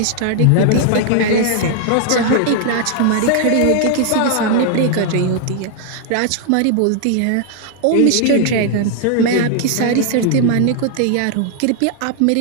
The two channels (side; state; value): both; different; correlation 0.00